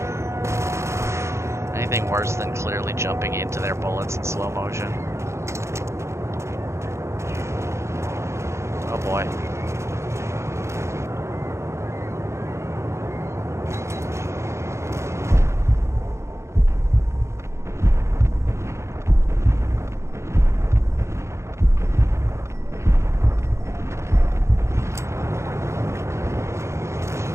Anything worse than clearly jumping into their bullets in slow motion. Oh boy.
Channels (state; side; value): late; left; 0.14 ms